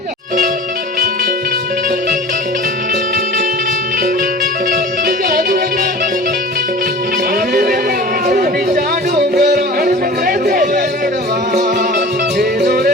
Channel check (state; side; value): normal; both; correlation 0.40